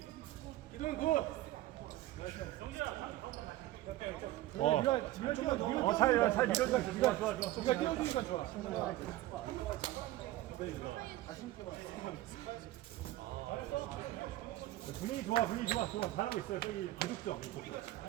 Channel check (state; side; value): quieter; left; 15.9 dB